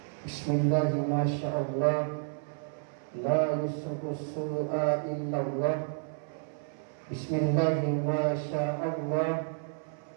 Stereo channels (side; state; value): left; silent; 57 dB below the other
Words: Bismillah, masya Allah, la yasuqu su'a illallah. Bismillah, masya Allah,